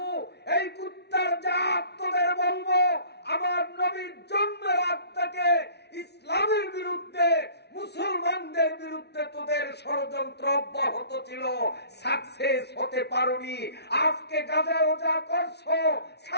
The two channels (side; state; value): right; late; 0.49 ms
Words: এই কুত্তার জাত তোদের বলবো, আমার নবীর জন্মের আগ থেকে ইসলামের বিরুদ্ধে, মুসলমানদের বিরুদ্ধে তোদের ষড়যন্ত্র অব্যাহত ছিল, সাকসেস হতে পারোনি। আজকে গাজায় যা করছো